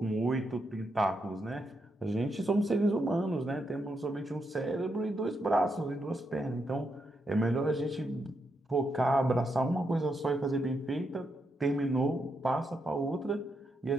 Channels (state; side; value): normal; both; correlation 0.82